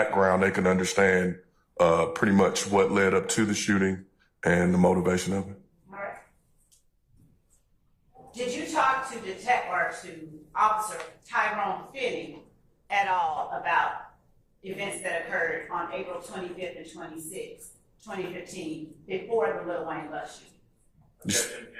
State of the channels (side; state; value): both; identical; correlation 1.00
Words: they can understand pretty much what led up to the shooting and the motivation of it. All right. Did you talk to Officer Tyrone Finney at all about events that occurred on April 25th and 26th, 2015, before the Lil Wayne bus shooting? Objection.